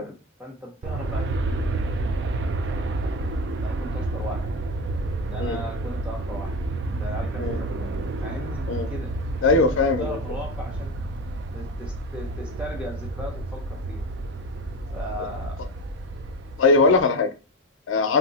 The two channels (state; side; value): normal; both; correlation 0.20